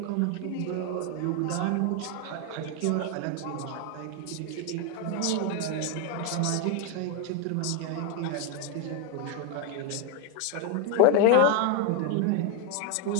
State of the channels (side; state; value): both; different; correlation 0.01